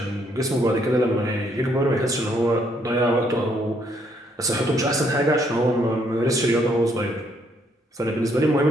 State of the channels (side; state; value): both; normal; correlation 0.70